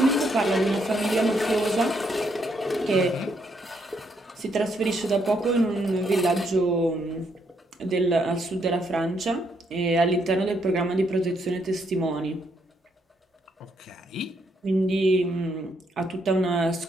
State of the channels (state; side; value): normal; both; correlation 0.75